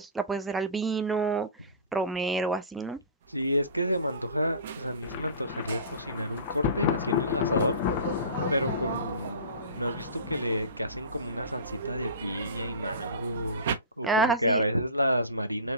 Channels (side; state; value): both; inverted; correlation -0.34